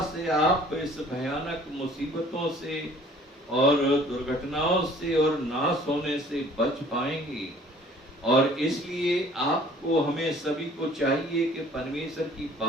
से आप इस भयानक मुसीबतों से और दुर्घटनाओं से और नाश होने से बच पाएंगे। और इसलिए आपको हमें सभी को चाहिए कि परमेश्वर की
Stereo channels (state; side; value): normal; both; correlation 0.53